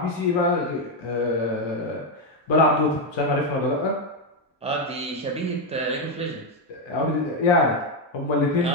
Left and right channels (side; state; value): both; normal; correlation 0.05